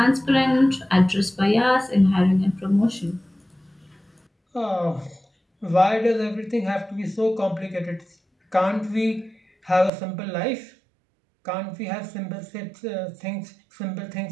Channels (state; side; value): drops out; left; at 9.9 s